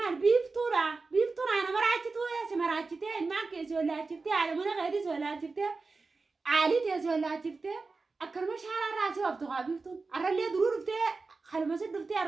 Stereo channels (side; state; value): left; quieter; 4.0 dB